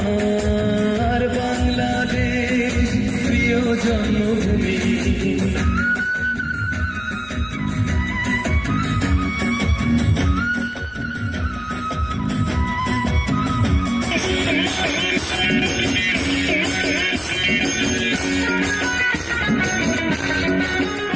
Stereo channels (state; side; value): noise; left; rumble, 24 dB below the sound